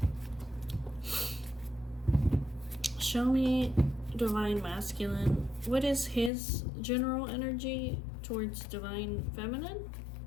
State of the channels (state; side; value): drops out; right; at 6.3 s